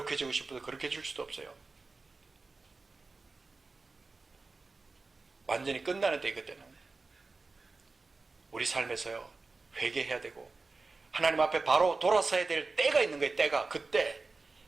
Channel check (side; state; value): left; quieter; 3.8 dB